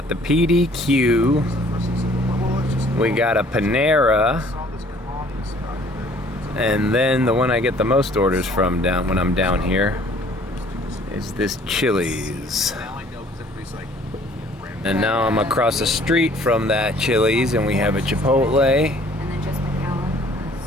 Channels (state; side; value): normal; both; correlation 0.56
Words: the PDQ, we got a Panera, and then the one I get the most orders from when I'm down here is this Chili's. And now I'm across the street from that Chili's and we have a Chipotle